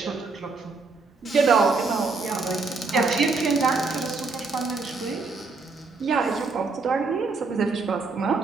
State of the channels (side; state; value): left; quieter; 4.1 dB